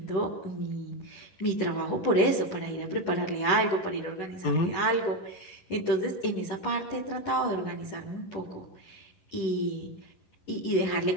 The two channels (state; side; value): late; right; 11 ms